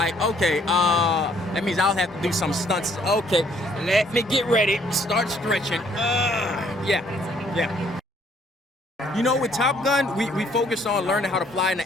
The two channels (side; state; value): both; normal; correlation 0.64